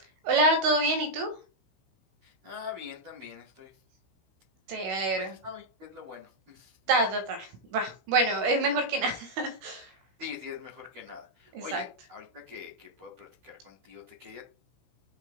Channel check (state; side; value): late; left; 16 ms